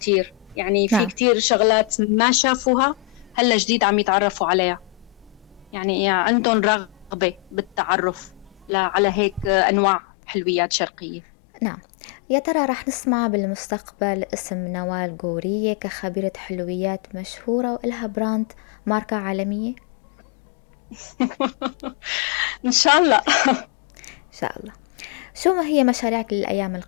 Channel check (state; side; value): drops out; right; at 9.6 s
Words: يعني في نعم. كتير شغلات ما شافوها هلا جديد عم يتعرفوا عليها. يعني عندهم رغبة بالتعرف على هيك أنواع حلويات شرقية. نعم. يا ترى رح نسمع بالمستقبل اسم نوال غورية كخبيرة حلويات مشهورة وإلها براند ماركة عالمية؟ إن شاء الله. إن شاء الله. شو ما هي مشاريعك للأيام